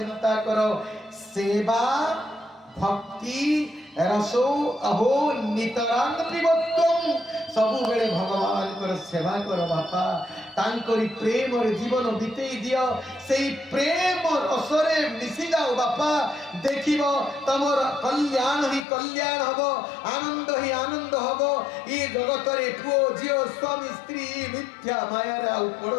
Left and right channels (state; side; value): drops out; right; at 18.9 s